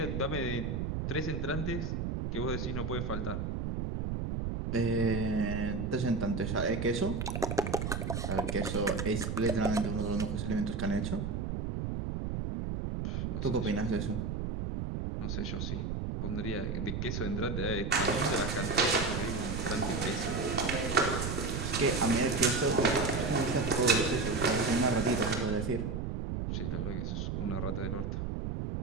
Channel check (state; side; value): noise; right; rumble, 2 dB below the sound